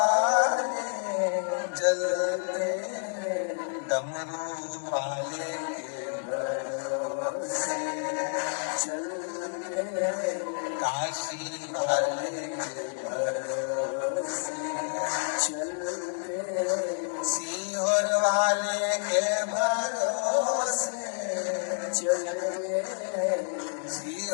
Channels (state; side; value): silent; right; digital silence